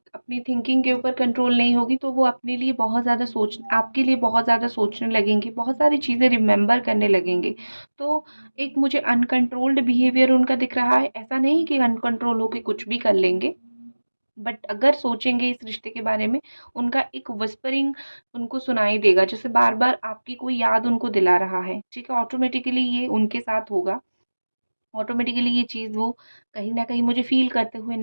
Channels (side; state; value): both; inverted; correlation -1.00